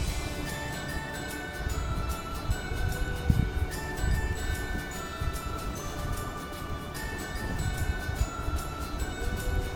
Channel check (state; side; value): identical; both; correlation 1.00